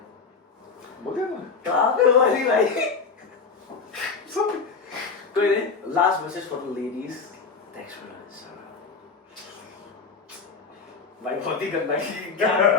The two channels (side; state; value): right; quieter; 4.9 dB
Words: बोल दिया ना? कहाँ पे बोली भाई? कोई नहीं, last message for the ladies. Thanks for this. भाई बहुत ही गंदा, क्या मैंने